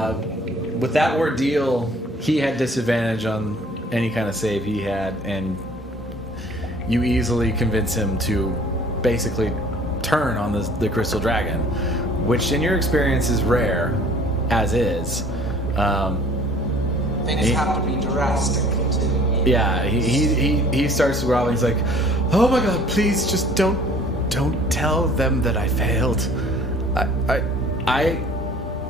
With that ordeal, he had disadvantage on any kind of save he had, and you easily convince him to basically turn on the crystal dragon, which in your experience is rare, as is. Things have to be drastic to... Yeah, he starts growling. He's like, "Oh my God, please just don't tell them that I failed.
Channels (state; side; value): normal; both; correlation 0.53